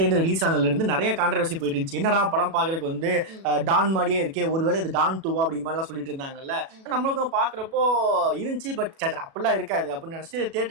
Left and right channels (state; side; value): late; left; 37 ms